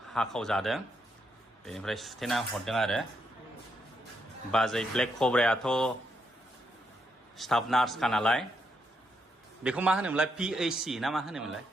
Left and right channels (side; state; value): both; normal; correlation 0.79